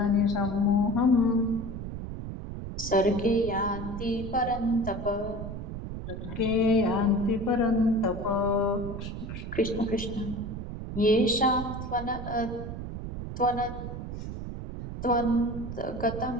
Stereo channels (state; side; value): noise; right; rumble, 7 dB below the sound